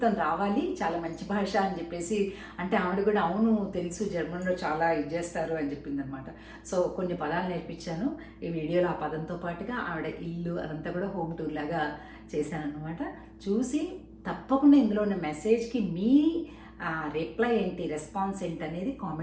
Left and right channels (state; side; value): identical; both; correlation 1.00